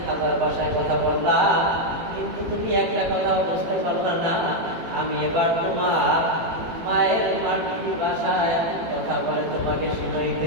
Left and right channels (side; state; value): left; late; 18 ms